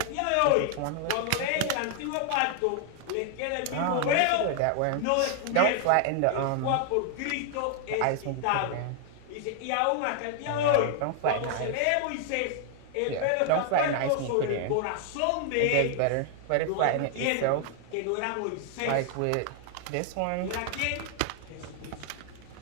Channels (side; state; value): both; different; correlation 0.00